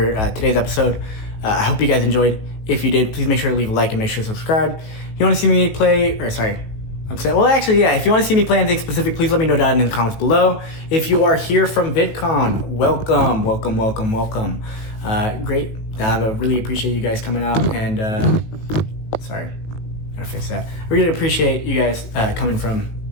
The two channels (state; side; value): late; right; 18 ms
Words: today's episode. I hope you guys enjoyed. If you did, please make sure to leave a like and make sure to subscribe. If you want to see me play, or sorry, I'm saying, well, actually, yeah, if you want to see me play anything specific, please let me know down in the comments below. If you are here from Vidcon, welcome, welcome, welcome, welcome. Great. I really appreciate you guys coming out, and sorry, gotta fix that. I really appreciate you guys coming from